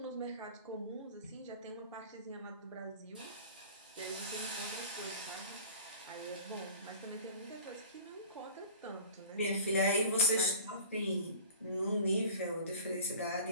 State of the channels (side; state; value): both; inverted; correlation -0.40